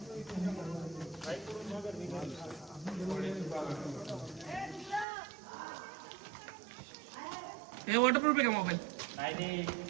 हे वॉटरप्रूफ आहे का मोबाईल.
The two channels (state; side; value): drops out; left; at 5.1 s